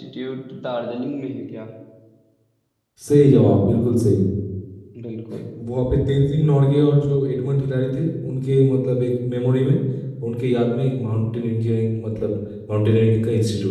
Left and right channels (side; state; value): both; identical; correlation 1.00